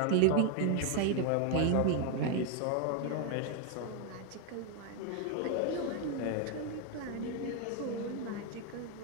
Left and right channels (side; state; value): both; different; correlation 0.01